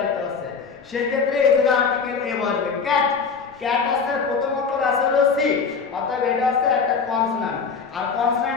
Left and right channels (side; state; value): right; quieter; 5.5 dB